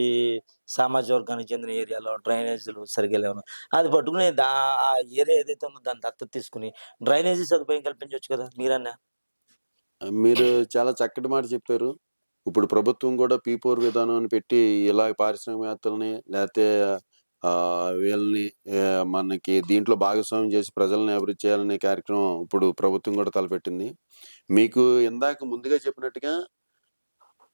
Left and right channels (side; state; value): both; inverted; correlation -1.00